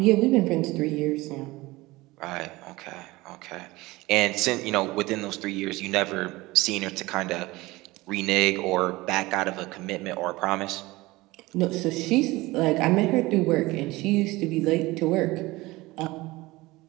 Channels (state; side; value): quieter; left; 20.5 dB